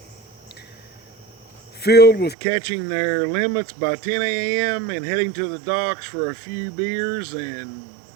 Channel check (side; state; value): left; drops out; at 2.4 s